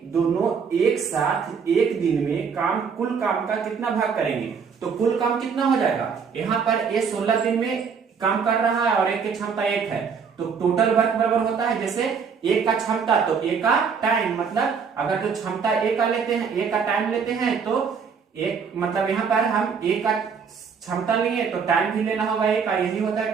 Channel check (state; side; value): quieter; left; 6.1 dB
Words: दोनों एक साथ एक दिन में कुल काम का कितना भाग करेंगे। तो कुल काम कितना हो जाएगा, यहाँ पर ए 16 दिन में काम कर रहा है और एक की क्षमता 1 है, तो टोटल वर्क बराबर होता है जैसे ए का क्षमता तो ए का टाइम, मतलब अगर जो क्षमता ए का लेते हैं, ए का टाइम लेते हैं, तो एक मतलब यहाँ पर हम ए का क्षमता लेंगे तो टाइम भी लेना होगा ए का, यही होता है